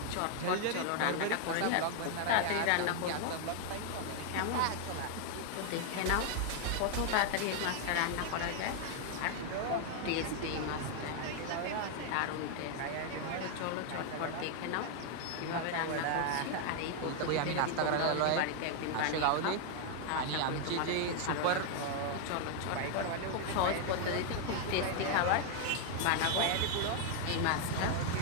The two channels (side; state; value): both; different; correlation 0.00